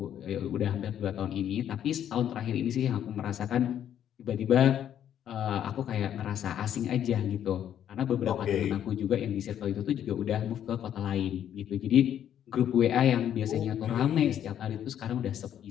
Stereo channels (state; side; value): quieter; right; 10.1 dB